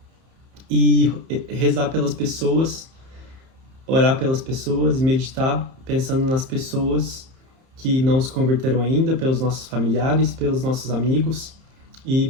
e rezar pelas pessoas, orar pelas pessoas e meditar pensando nas pessoas que não se converteram ainda, pelos nossos familiares, pelos nossos amigos e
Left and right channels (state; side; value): late; left; 30 ms